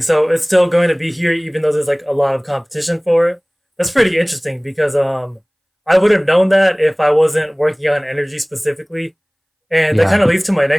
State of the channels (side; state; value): both; identical; correlation 1.00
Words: So it's still going to be here, even though there's like a lot of competition for it. That's pretty interesting because I would have known that if I wasn't working on energy specifically. And that Yeah. kind of leads to my